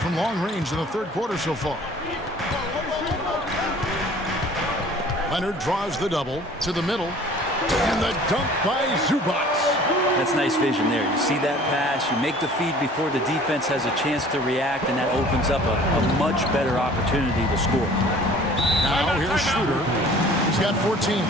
long range in the third quarter so far. Leonard draws the double to the middle, and the dunk by Zubac. That's nice vision there. You see that pass, you make the feed before the defense has a chance to react, and that opens up a much better opportunity to score. Now here's Schroeder. He's got 14.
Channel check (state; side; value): normal; both; correlation 0.49